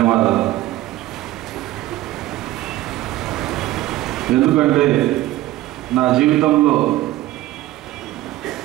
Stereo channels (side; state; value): left; quieter; 16.0 dB